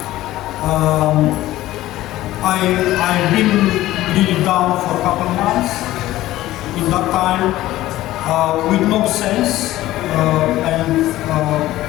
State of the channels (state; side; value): quieter; right; 15.6 dB